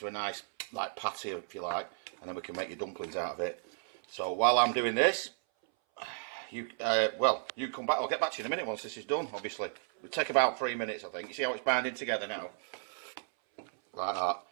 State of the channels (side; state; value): left; silent; 55 dB below the other